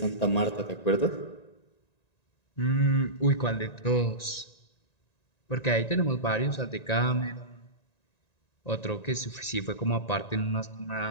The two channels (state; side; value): late; right; 1.9 ms